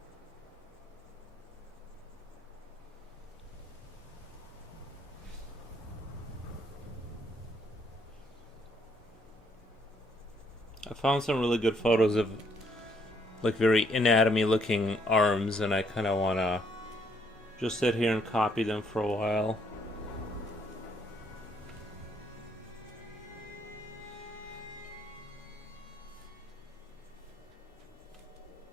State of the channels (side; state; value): both; normal; correlation 0.69